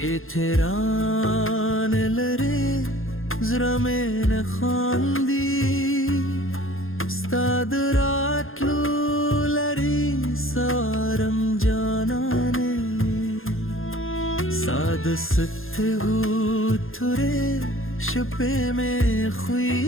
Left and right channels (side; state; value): right; late; 0.60 ms